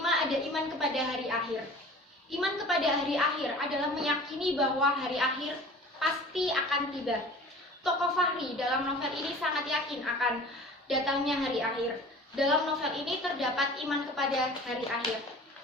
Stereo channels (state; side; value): normal; both; correlation 0.43